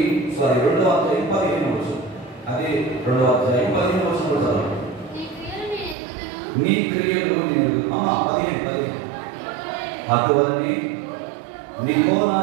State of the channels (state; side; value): drops out; left; at 6.0 s